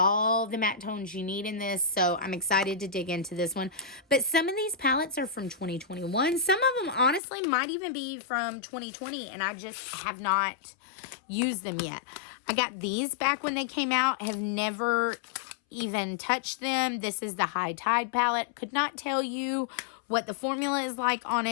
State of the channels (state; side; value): drops out; right; at 7.2 s